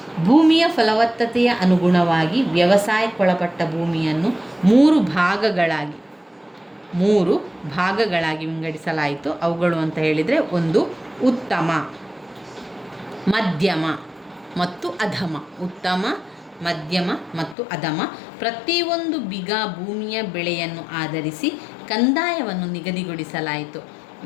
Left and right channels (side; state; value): right; drops out; at 17.6 s